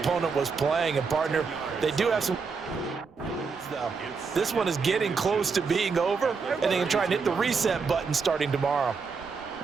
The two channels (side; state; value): left; quieter; 5.1 dB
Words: was playing. And, partner, they do have some... This one is getting close to being over, and they can try and hit the reset button starting tomorrow.